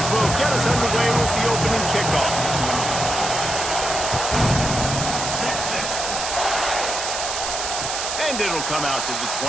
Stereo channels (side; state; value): right; noise; hiss, 3 dB below the sound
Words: will get us underway with the opening kickoff. And it'll come out to the